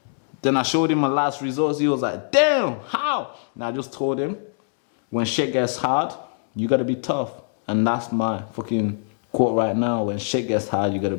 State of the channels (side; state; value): right; silent; digital silence